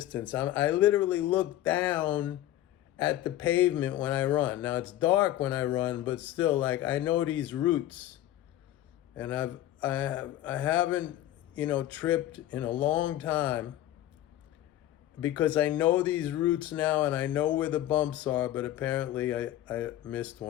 I literally look down at the pavement when I run. Now it's dark when I run, but still, like I know these routes, and I haven't tripped in a long time because I know these routes now and I know where the bumps are. But apparently, I missed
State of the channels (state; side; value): quieter; right; 13.6 dB